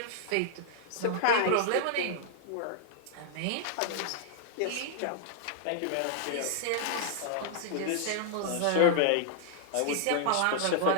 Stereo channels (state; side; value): different; both; correlation -0.01